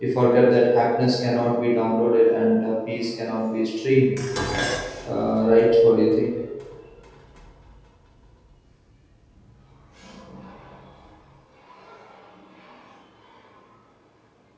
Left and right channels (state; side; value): identical; both; correlation 1.00